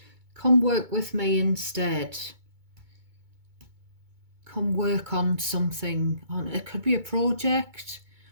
work with me instead. Come work on something. It could be a project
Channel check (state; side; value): late; left; 2.2 ms